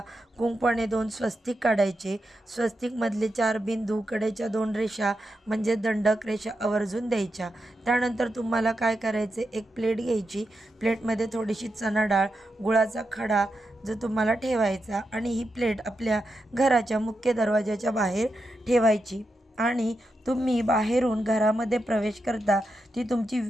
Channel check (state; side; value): normal; both; correlation 0.87